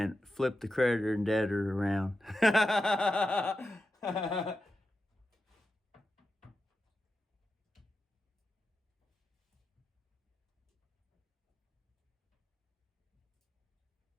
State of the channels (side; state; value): both; normal; correlation 0.90